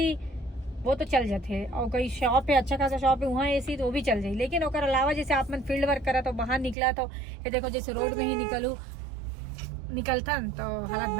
वो तो चल जाते हैं। और कोई शॉप है, अच्छा खासा शॉप है, वहाँ एसी तो वो भी चल जाए। लेकिन ओकर अलावा जैसे आप मन फील्ड वर्क करा तो बाहर निकला तो ये देखो, जैसे रोड में ही निकलता तो हालत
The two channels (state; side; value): drops out; left; at 6.8 s